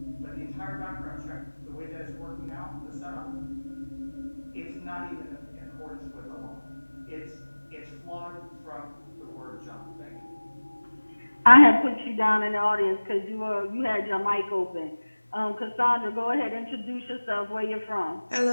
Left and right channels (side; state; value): both; inverted; correlation -1.00